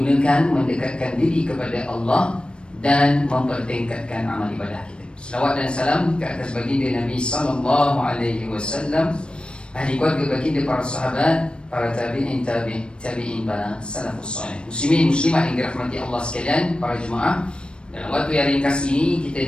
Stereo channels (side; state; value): right; late; 0.055 ms